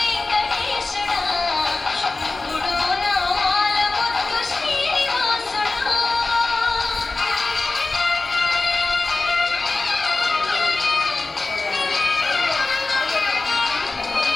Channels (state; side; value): quieter; right; 3.5 dB